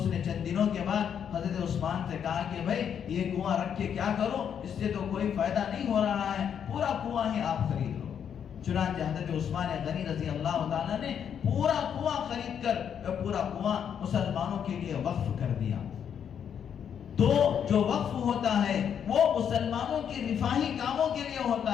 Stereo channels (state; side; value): quieter; right; 8.2 dB